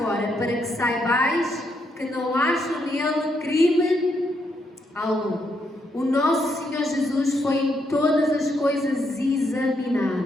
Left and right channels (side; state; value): both; normal; correlation 0.77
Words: para que saibais que não acho nele crime algum. O nosso Senhor Jesus foi em todas as coisas